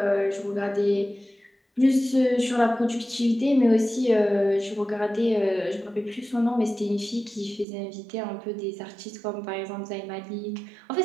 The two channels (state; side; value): drops out; left; at 7.7 s